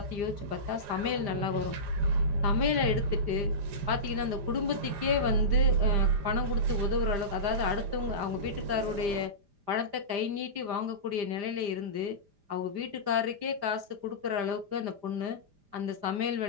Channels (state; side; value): late; left; 5.0 ms